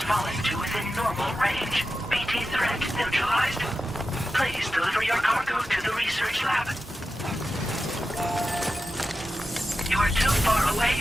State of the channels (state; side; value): normal; both; correlation 0.91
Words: fallen to within normal range. BT threat neutralized. Please deliver your cargo to the research lab. You are too far away